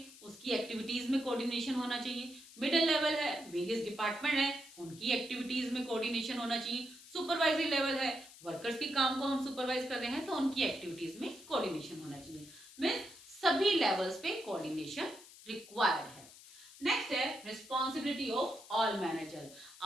उसकी एक्टिविटीज में कोऑर्डिनेशन होना चाहिए। मिडिल लेवल है, वेरियस डिपार्टमेंट है, उनकी एक्टिविटीज में कोऑर्डिनेशन होना चाहिए। सुपरवाइजरी लेवल है, वर्कर्स के काम को हम सुपरवाइज कर रहे हैं तो उनकी एक्टिविटीज में कोऑर्डिनेशन होना चाहिए। मीन्स सभी लेवल्स पे कोऑर्डिनेशन रिक्वायर्ड है। नेक्स्ट है रिस्पॉन्सिबिलिटी ऑफ ऑल मैनेजर।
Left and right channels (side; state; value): left; noise; hiss, 19 dB below the sound